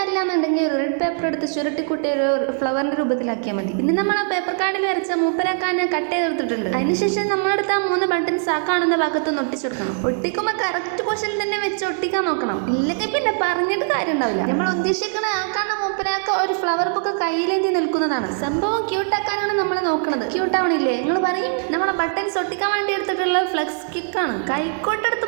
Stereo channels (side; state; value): left; silent; 65 dB below the other